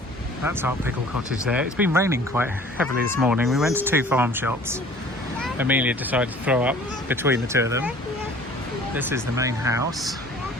That's our pickle cottage there. It's been raining quite heavily this morning. We went to 2 farm shops. Amelia decided to throw up between the 2 of them. This is the main house.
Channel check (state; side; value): normal; both; correlation 0.50